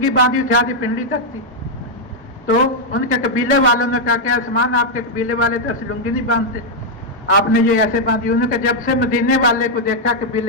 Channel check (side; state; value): both; normal; correlation -0.02